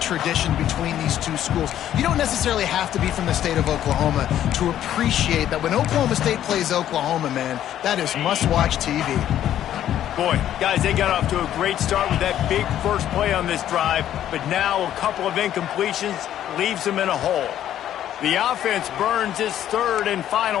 between these two schools. You don't necessarily have to be from the state of Oklahoma to appreciate that when Oklahoma State plays Oklahoma, man, that is must-watch TV. Boy, guys, they got off to a great start with that big first play on this drive, but now a couple of incompletions leaves them in a hole. The offense burns its third and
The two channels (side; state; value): right; quieter; 11.4 dB